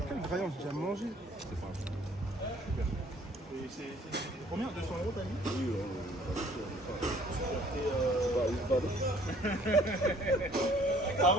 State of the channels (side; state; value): both; normal; correlation 0.57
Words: Quel graillon, j'ai déjà mangé. C'est combien? 200 € t'as mis? Oui,